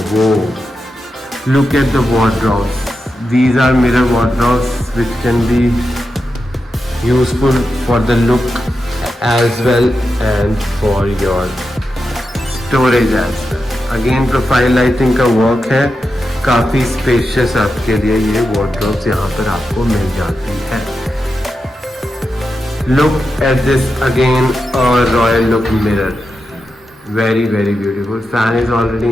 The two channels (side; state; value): both; normal; correlation 0.89